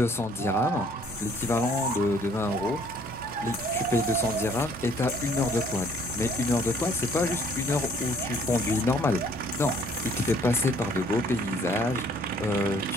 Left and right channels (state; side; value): normal; both; correlation 0.60